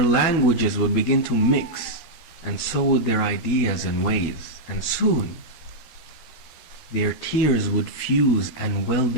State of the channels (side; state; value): right; late; 13 ms